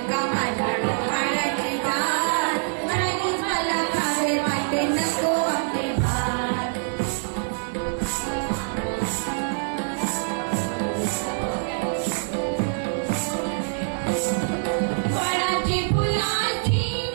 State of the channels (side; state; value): left; silent; digital silence